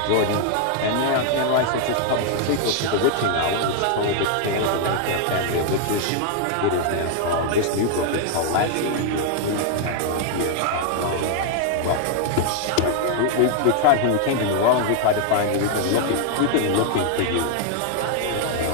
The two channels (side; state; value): both; different; correlation 0.00